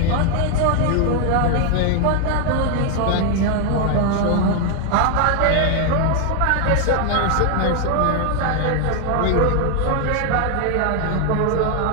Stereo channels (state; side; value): different; both; correlation 0.00